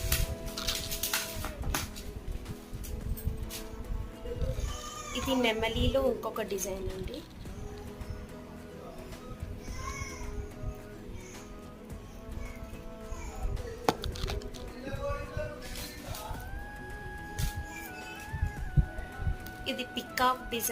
ఇది నెమలిలో ఇంకొక డిజైన్ అండి. ఇది పికాక్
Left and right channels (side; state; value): both; identical; correlation 1.00